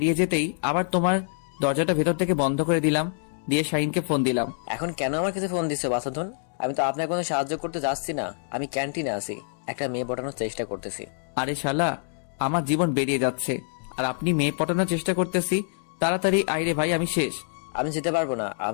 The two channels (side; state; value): right; silent; 61 dB below the other